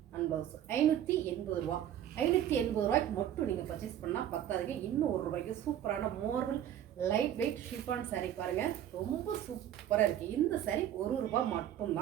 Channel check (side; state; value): left; quieter; 10.9 dB